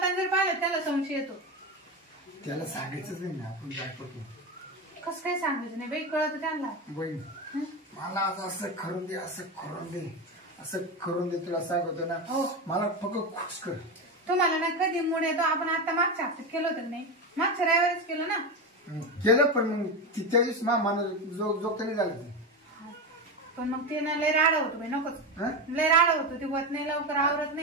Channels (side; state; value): both; normal; correlation 0.17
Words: जर पाहिलं त्याला संशय येतो त्याला सांगायचंच नाही ना आपण काय करतो कसं काय सांगायचं नाही बाई कळत त्यांना बहीण मला आज असं करून दे असं करून दे तुला सांगतो ना हो मला फक्त खुश कर तुम्हाला ना कधी मूड येतो आपण आता मागच्या हप्त्यात केलं होतं नाही मागच्या रविवारीच केलं ना केलं पण मग त्या दिवशी मला जोगत नाही झालं ते पण मग ते ना लय राडा होतो बाई नकोच लय राडा होतो ते होत नाही लवकर आवरत